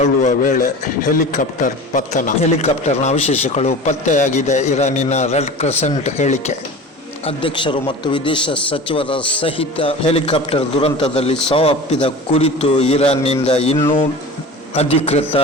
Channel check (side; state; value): both; normal; correlation 0.35